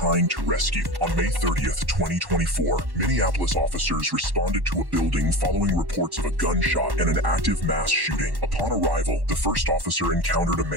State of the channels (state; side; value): late; left; 1.1 ms